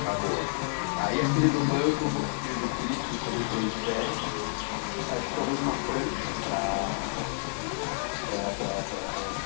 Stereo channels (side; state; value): right; silent; 58 dB below the other